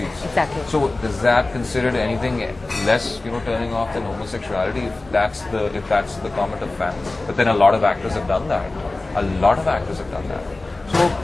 Exactly. So does that considered anything less turning off than homosexuality if that's the comment of fans? But then a lot of actors have done that. So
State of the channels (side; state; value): right; quieter; 3.1 dB